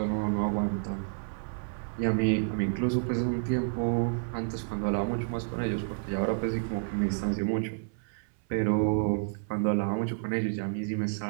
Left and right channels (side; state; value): left; silent; 58 dB below the other